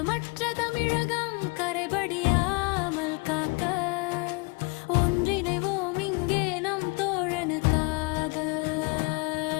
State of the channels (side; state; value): right; quieter; 30.0 dB